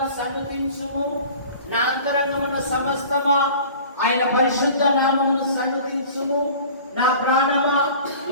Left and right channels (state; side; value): inverted; both; correlation -0.44